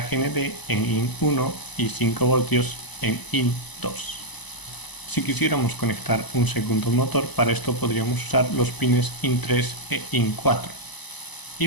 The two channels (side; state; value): right; late; 1.0 ms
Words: GND en IN1 y 5 voltios en IN2. Si quisiéramos conectar un segundo motor, para esto podríamos usar los pines IN3 e IN4